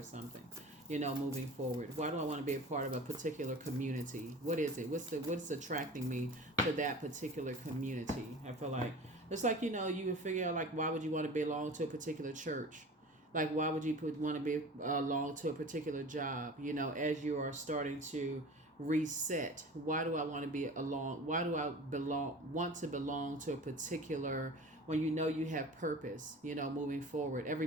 something, moving forward? Why do I want to be a part of a particular community? What is it? What's attracting me to that particular community? I feel like it's like, you would figure out, like, why would you want to belong to a particular church? Like, why would you want to belong to a particular job? As you are starting to reset, why do I want to be along? Why do I want to belong to a particular, when you have purpose, moving forward?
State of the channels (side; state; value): both; normal; correlation 0.38